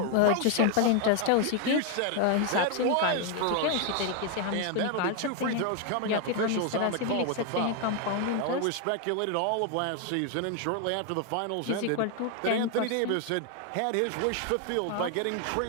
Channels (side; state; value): both; different; correlation 0.01